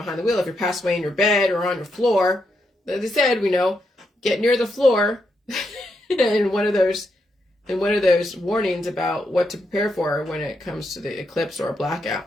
the wheel. If you're passed away in your bed or on your floor, as I said, get near the floor and one of those warnings about what to prepare for when it comes to the eclipse or a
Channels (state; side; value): normal; both; correlation 0.81